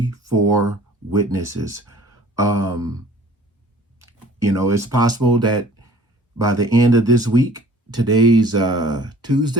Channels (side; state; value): both; normal; correlation 0.50